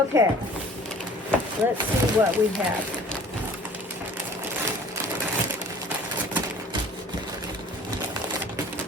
Let's see what we have.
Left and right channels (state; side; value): normal; both; correlation 0.48